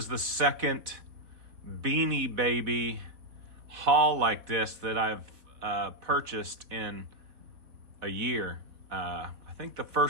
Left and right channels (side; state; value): left; late; 4.0 ms